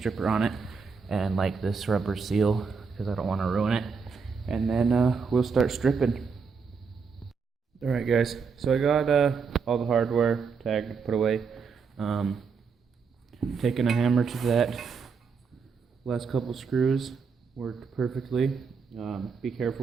on it, and like this rubber seal, because I don't want to ruin it. And then we'll start stripping. Alright guys, so I got all the hardware tagged, put away. Taking a hammer to that. Last couple screws worked perfectly. Be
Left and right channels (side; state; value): left; quieter; 5.4 dB